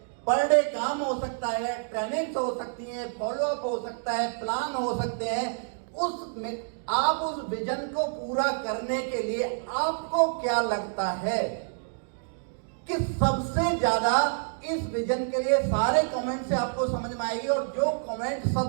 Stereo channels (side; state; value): left; silent; digital silence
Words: पर डे काम हो सकता है, ट्रेनिंग्स हो सकती है, फॉलोअप हो सकता है, प्लान हो सकते हैं। उसमें आप उस विजन को पूरा करने के लिए आपको क्या लगता है कि सबसे ज्यादा इस विजन के लिए? सारे कमेंट से आपको समझ में आएगी, और जो कमेंट